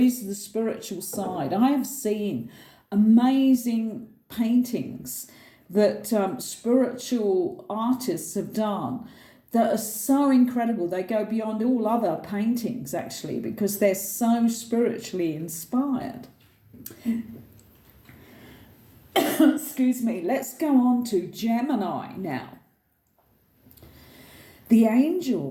the spiritual side. I have seen amazing paintings that spiritual artists have done that are so incredible. They go beyond all other paintings, actually, because they're so spiritually inspired. Excuse me. Let's go on to Gemini now. The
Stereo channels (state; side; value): identical; both; correlation 1.00